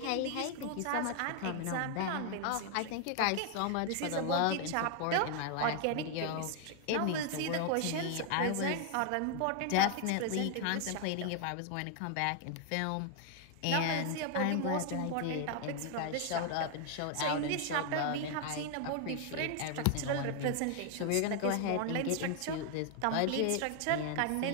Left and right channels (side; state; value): both; different; correlation 0.00